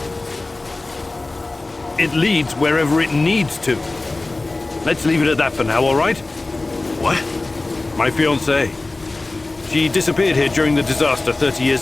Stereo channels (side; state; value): right; quieter; 3.1 dB